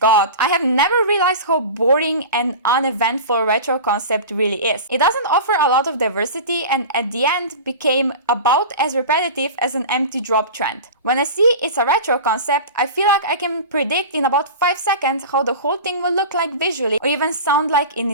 I have never realized how boring and uneventful retro concept really is. It doesn't offer a lot of diversity, and at the end became about as repetitive as an empty drop trend. When I see it's a retro concept, I feel like I can predict in about 5 seconds how the whole thing will look like visually or even sound like in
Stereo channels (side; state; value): both; inverted; correlation -0.32